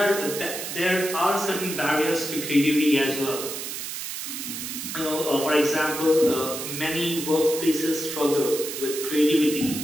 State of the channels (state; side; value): noise; right; hiss, 6 dB below the sound